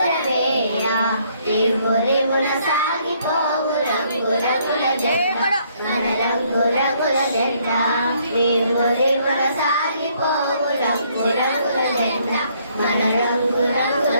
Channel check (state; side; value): inverted; both; correlation -0.67